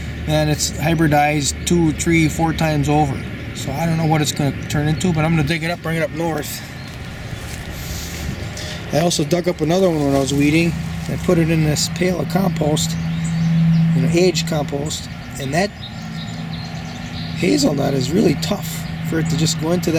man, it's hybridized 2, 3, 4 times over. So I don't know what it's going to turn into, but I'm going to dig it up, bring it up north. I also dug up another one when I was weeding. I put it in this pail of compost, aged compost, and that hazelnut is really tough for it to just go into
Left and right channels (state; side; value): identical; both; correlation 1.00